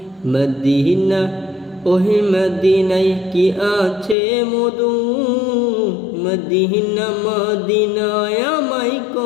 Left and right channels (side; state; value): right; drops out; at 4.2 s